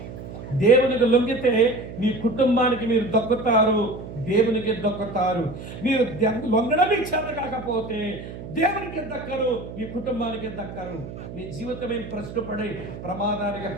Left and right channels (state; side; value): noise; right; hum, 11 dB below the sound